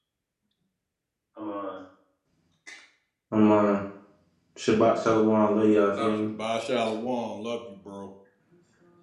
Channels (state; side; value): identical; both; correlation 1.00